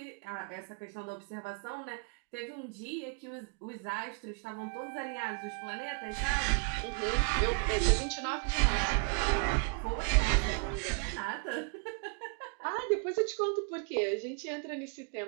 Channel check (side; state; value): left; quieter; 36.2 dB